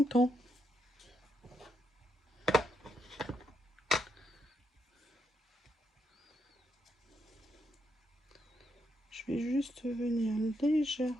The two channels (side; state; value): both; normal; correlation 0.79